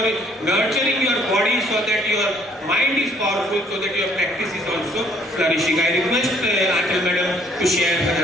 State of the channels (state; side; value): normal; both; correlation 0.61